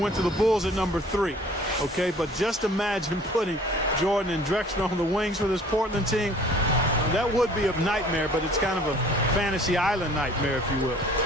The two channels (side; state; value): both; normal; correlation 0.52